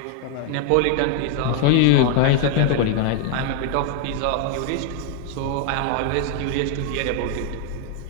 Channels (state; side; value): different; both; correlation 0.00